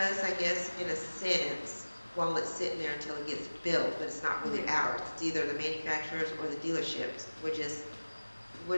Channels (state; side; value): inverted; both; correlation -1.00